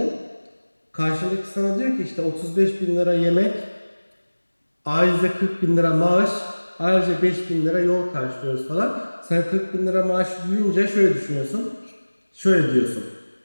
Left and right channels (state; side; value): inverted; both; correlation -1.00